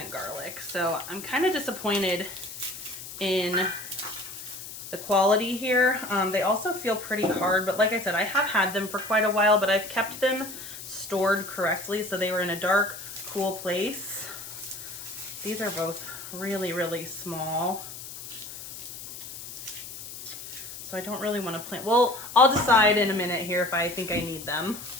garlic. So I'm kind of disappointed in the quality here. They also feel pretty hard, but like I said, I have had them for quite a while, but I've kept them stored correctly. So they were in a dark, cool place. These are both really, really small. So I don't really want to plant. Well, I'll decide in a minute here if I think I need them.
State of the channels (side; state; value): left; noise; hiss, 12 dB below the sound